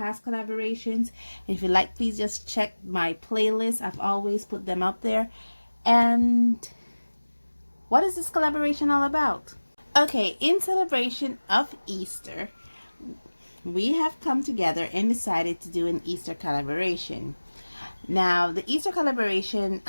collaborations. If you like, please just check my playlist. I've always put them up there. And what is this collaboration all about? Okay, in celebration of Easter, we have come together and decided to do an Easter collaboration. Now, the Easter collaboration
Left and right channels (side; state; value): both; inverted; correlation -1.00